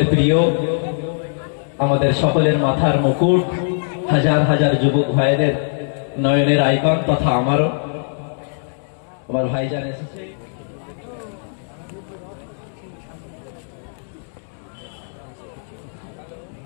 প্রিয় আমাদের সকলের মাথার মুকুট হাজার হাজার যুবক ভাইদের নয়নের আইকন তথা আমারও আমার ভাইজান এসেছে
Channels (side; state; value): right; silent; digital silence